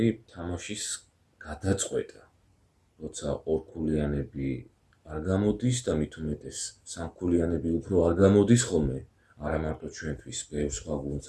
თამაშის გადაწყვეტა. როცა ორქულიანები არ გამოდის და მით უმეტეს სამქულიანები უფრო არ გამოდის ხოლმე, არა მარტო ჩვენთვის, ბევრ სხვა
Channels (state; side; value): identical; both; correlation 1.00